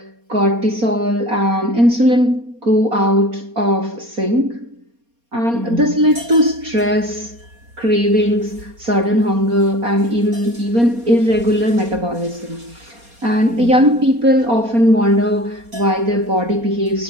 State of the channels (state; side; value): late; left; 4.2 ms